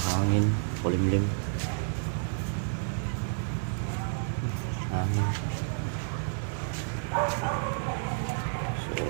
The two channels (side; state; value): left; silent; digital silence